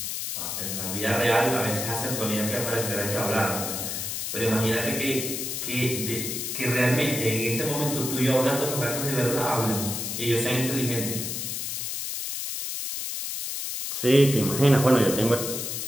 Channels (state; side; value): noise; left; hiss, 4 dB below the sound